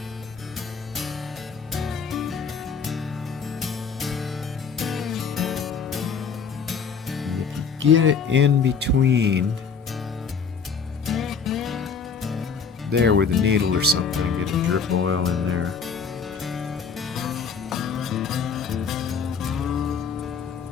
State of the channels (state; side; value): quieter; right; 5.8 dB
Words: And if you get it in between there with a needle or something and get a drip of oil in there.